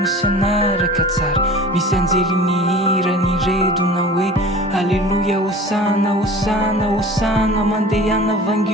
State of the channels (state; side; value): normal; both; correlation 0.40